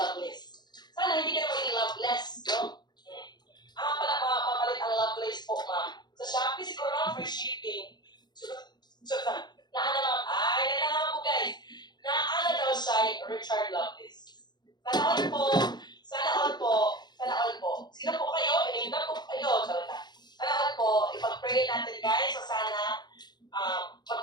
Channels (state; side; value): late; right; 0.21 ms